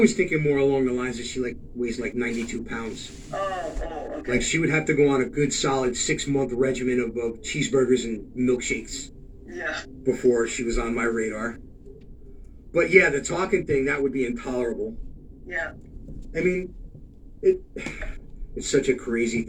thinking more along the lines that she weighs 92 pounds. Oh, okay. Like, she would have to go on a good solid 6-month regimen of cheeseburgers and milkshakes. Yeah. Before she was on my radar. But yeah, the talking thing, that would be intolerable. Yeah. I mean, it's such a crazy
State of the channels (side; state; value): both; identical; correlation 1.00